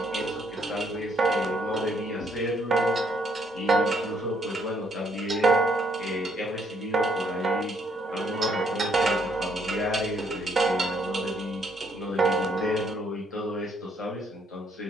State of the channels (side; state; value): both; normal; correlation 0.69